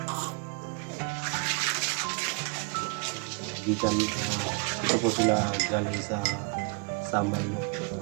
Gikan ito po sila galing sa Samal no.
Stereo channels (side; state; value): left; quieter; 34.4 dB